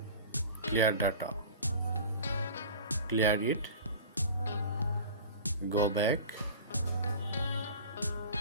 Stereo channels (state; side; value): inverted; both; correlation -0.38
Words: clear data. Clear it. Go back.